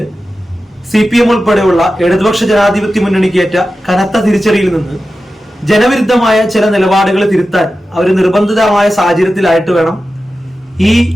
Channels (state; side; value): normal; both; correlation 0.93